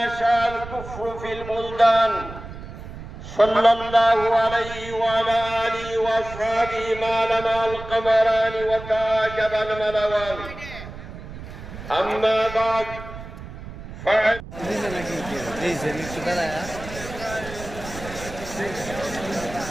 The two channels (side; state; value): right; noise; rumble, 12 dB below the sound